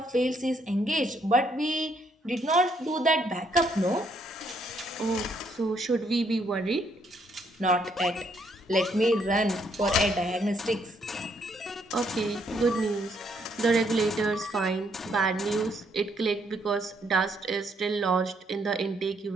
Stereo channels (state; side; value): normal; both; correlation 0.71